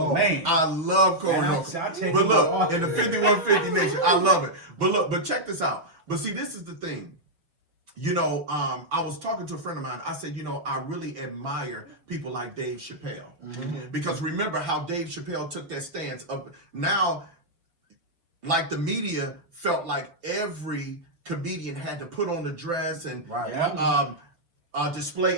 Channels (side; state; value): left; late; 6.0 ms